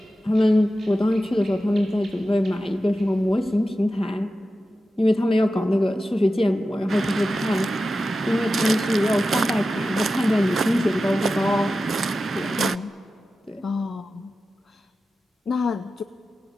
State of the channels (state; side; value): normal; both; correlation 0.93